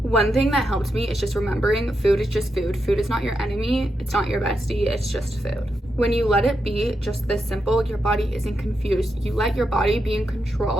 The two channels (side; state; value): both; normal; correlation 0.85